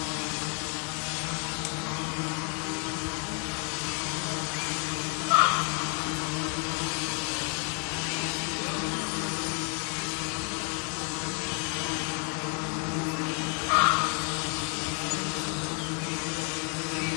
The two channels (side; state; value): right; quieter; 38.5 dB